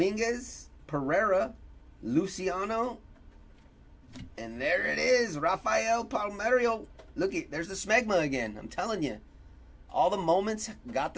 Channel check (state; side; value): identical; both; correlation 1.00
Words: Pereira, Luciano, and there it is, Rafael Palmeiro. Look it, there's the smegma again. I'm telling you, all the moments got